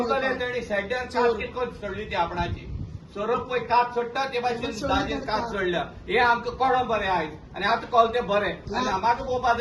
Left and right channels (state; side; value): identical; both; correlation 1.00